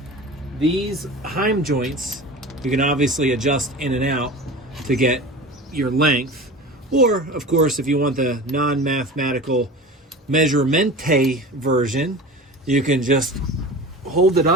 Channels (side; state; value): both; normal; correlation 0.34